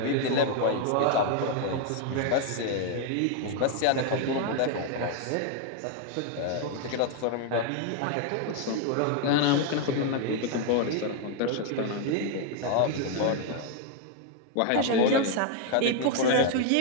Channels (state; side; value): different; both; correlation 0.00